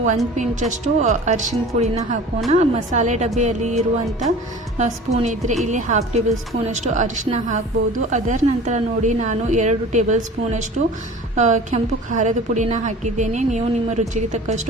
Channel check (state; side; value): normal; both; correlation 0.41